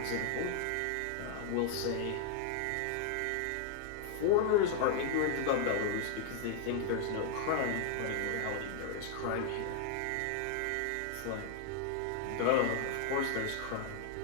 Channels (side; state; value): both; different; correlation 0.00